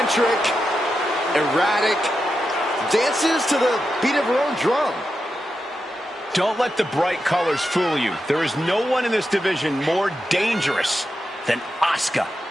erratic, dances to the beat of her own drum. Don't let the bright colors fool you. There is no one in this division more dangerous than Asuka.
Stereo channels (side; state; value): both; normal; correlation 0.88